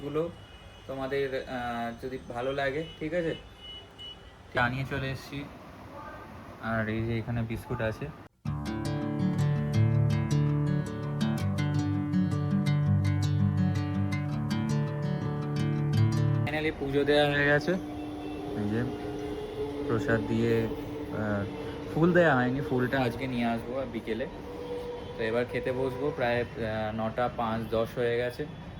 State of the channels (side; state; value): both; identical; correlation 1.00